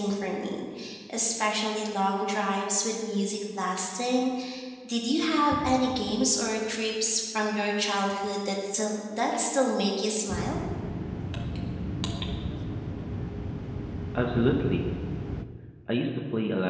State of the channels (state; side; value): identical; both; correlation 1.00